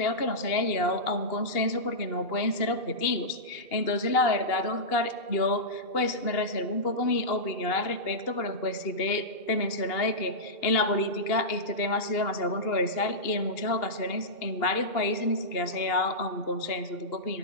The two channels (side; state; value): right; late; 2.8 ms